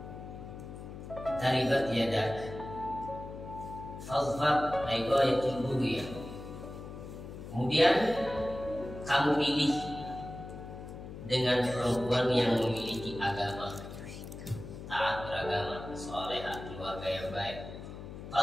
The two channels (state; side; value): noise; left; hum, 11 dB below the sound